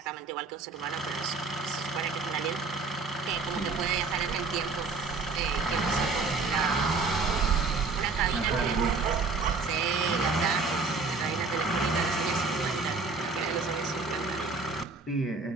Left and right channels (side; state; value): left; quieter; 4.2 dB